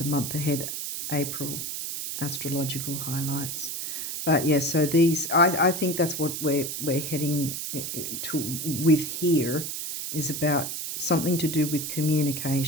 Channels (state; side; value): noise; right; hiss, 5 dB below the sound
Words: month ahead, April, astrological highlights. But yeah, so these, I think that's what we're heading to with here, is about something to do with